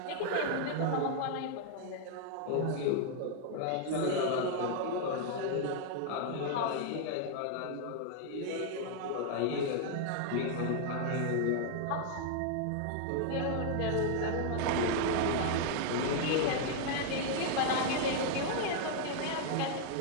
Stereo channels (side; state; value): both; different; correlation 0.00